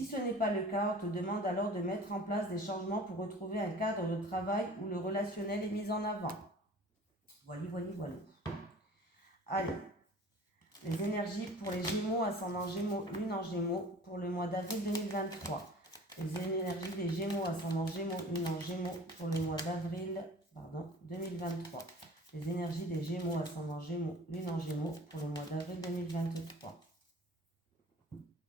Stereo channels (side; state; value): both; normal; correlation 0.44